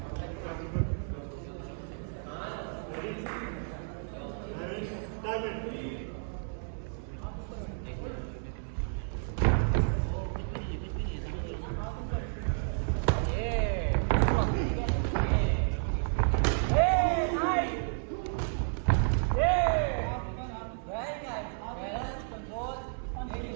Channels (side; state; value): left; silent; 57 dB below the other